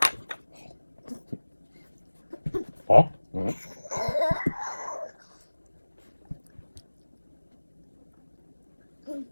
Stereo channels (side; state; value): both; inverted; correlation -1.00